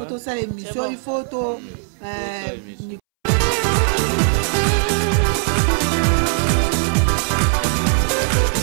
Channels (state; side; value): silent; left; 66 dB below the other